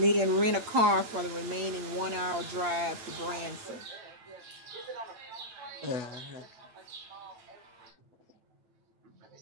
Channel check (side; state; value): left; late; 8.6 ms